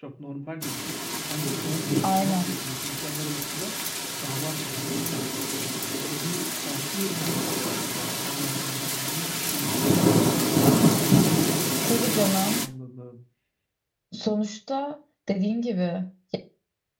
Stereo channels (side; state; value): both; identical; correlation 1.00